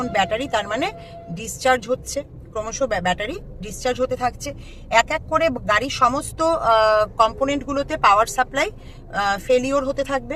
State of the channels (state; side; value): identical; both; correlation 1.00